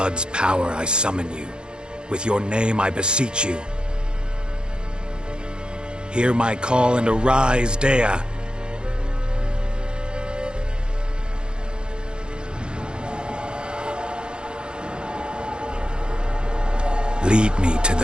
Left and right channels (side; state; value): left; late; 0.049 ms